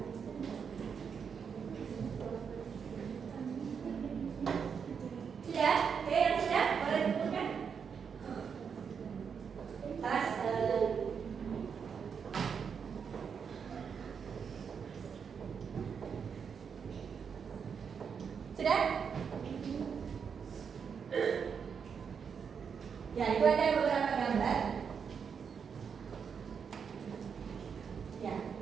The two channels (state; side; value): quieter; left; 6.6 dB